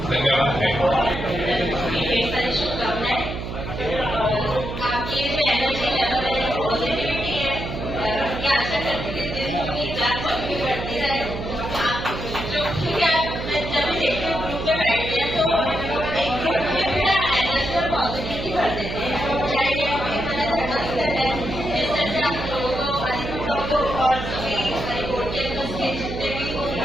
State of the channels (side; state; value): right; noise; hum, 7 dB below the sound